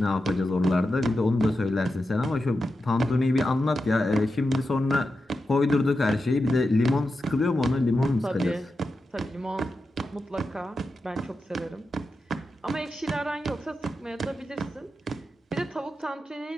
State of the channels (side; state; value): both; normal; correlation 0.89